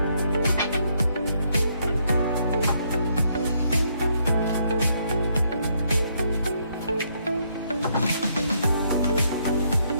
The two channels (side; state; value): both; inverted; correlation -0.72